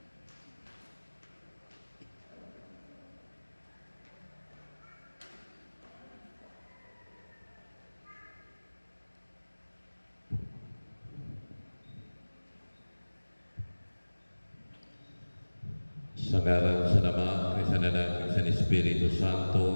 Sa ngalan sa Ama, kay sa Anak, kay sa Espiritu Santo.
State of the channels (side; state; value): both; inverted; correlation -1.00